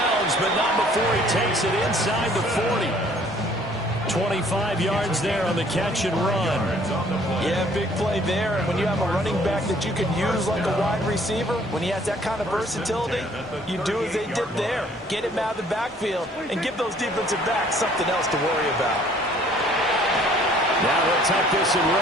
but not before he takes it inside the 40. 25 yards there on the catch and run. Yeah, big play there. And when you have a running back that you can use like a wide receiver, when he has that kind of versatility, you do as they did there. Get him out of the backfield and give those defensive backs something else to worry about. Now he'll tuck this and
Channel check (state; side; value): normal; both; correlation 0.58